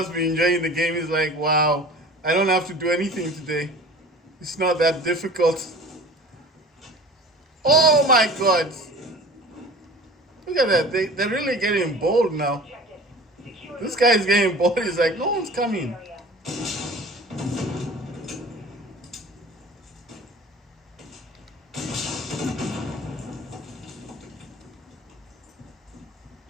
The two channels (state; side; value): normal; both; correlation 0.41